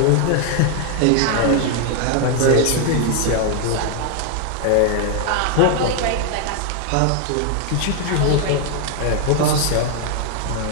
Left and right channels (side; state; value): both; different; correlation 0.00